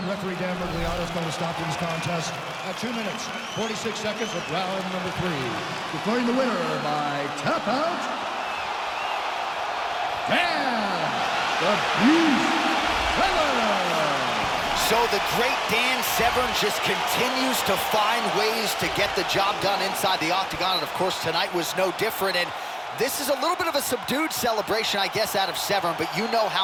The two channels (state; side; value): identical; both; correlation 1.00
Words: referee Dan Mergliano is going to stop this contest at 2 minutes, 46 seconds of round number 3. Declaring the winner by tap out, Dan the Beast Severn. So the great Dan Severn just continues to find ways to get the job done inside the octagon, and of course tonight was no different. And this is a little bit of a subdued celebration, I guess, out of Severn, but you know